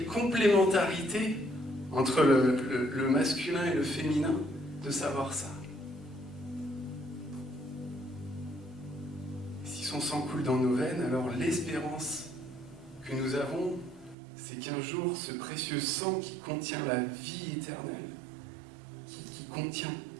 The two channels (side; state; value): left; drops out; at 14.2 s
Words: complémentarité entre le masculin et le féminin de savoir ça. Si son sang coule dans nos veines, alors l'espérance que nous avons, c'est qu'un jour, ce précieux sang qui contient la vie éternelle, qui contient